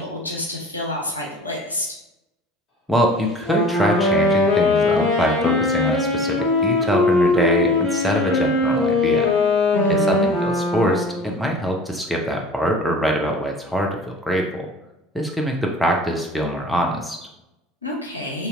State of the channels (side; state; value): both; normal; correlation 0.42